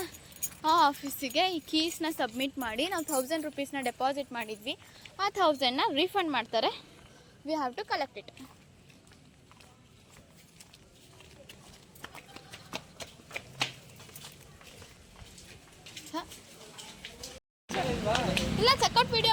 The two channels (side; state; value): both; identical; correlation 1.00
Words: ಆ ಆಫೀಸಿಗೆ ಈ ಕೀಸ್ನ ಸಬ್ಮಿಟ್ ಮಾಡಿ ನಾವು 1000 rupeesನ ಡೆಪಾಸಿಟ್ ಮಾಡಿದ್ವಿ. ಆ 1000ನ ರೀಫಂಡ್ ಮಾಡ್ತಾರೆ. We have to collect it. ಇಲ್ಲ, ಚೆಕ್ಔಟ್